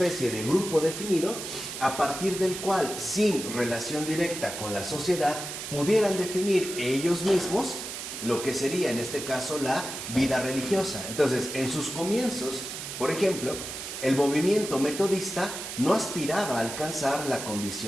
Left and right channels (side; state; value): right; noise; hiss, 7 dB below the sound